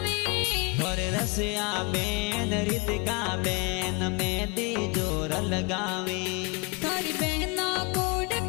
और रसिया बेन रितिका बेन मेहंदी जोर लगावे तारी बहना कोड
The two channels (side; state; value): right; quieter; 30.0 dB